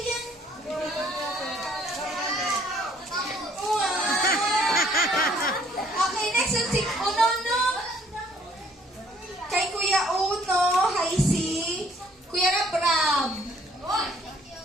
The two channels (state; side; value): normal; both; correlation 0.62